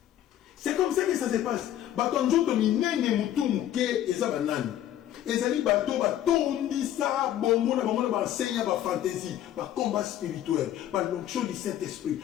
C'est comme ça que ça se passe. Bato njoto minene mutu muke eza banani. Ezali bato batondisa bongo na bango na ba enseigne ba fantaisie, ba combat spirituel, ba l'onction du Saint-Esprit,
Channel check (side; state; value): right; quieter; 11.9 dB